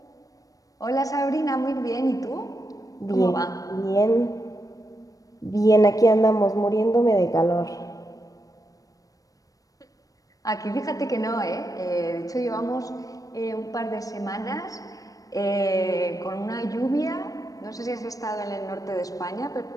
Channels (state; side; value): late; right; 0.17 ms